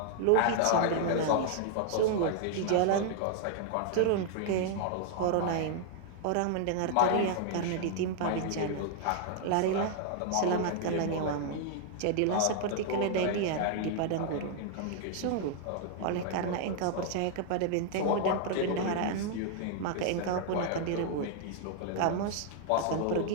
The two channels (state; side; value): different; both; correlation 0.00